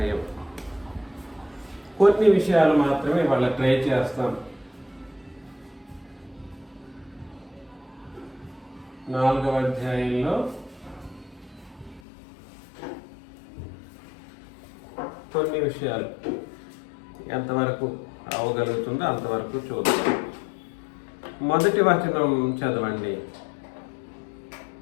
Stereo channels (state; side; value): drops out; right; at 12.0 s